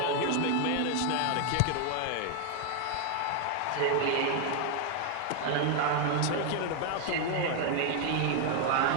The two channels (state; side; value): different; both; correlation 0.00